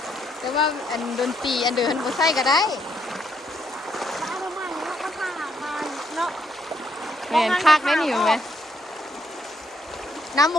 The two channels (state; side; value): normal; both; correlation 0.73